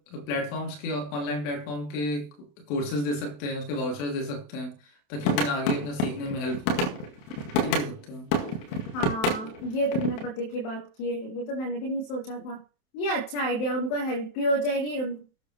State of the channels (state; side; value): late; right; 27 ms